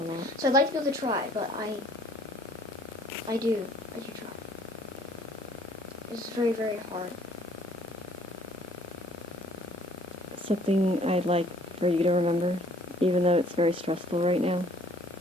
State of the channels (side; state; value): both; normal; correlation 0.58